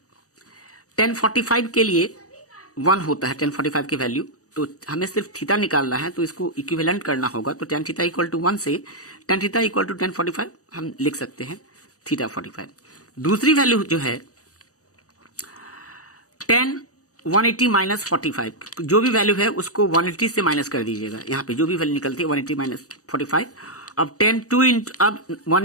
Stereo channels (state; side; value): late; right; 0.66 ms